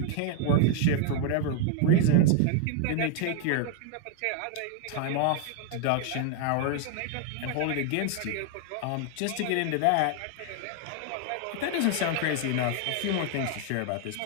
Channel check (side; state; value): both; different; correlation 0.00